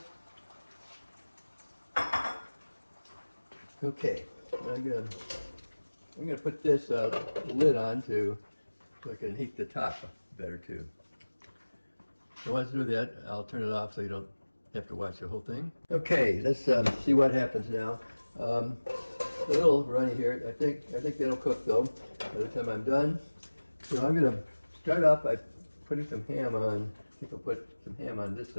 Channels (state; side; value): inverted; both; correlation -1.00